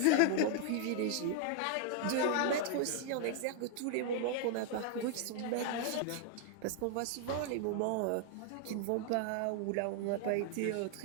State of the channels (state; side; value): different; both; correlation 0.00